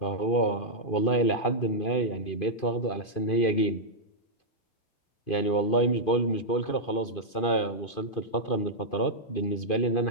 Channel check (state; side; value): late; right; 2.5 ms